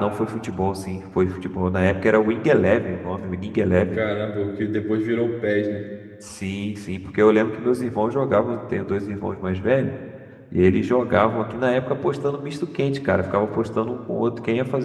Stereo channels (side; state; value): both; identical; correlation 1.00